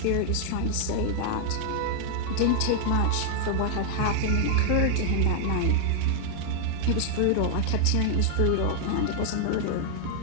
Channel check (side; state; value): both; different; correlation 0.00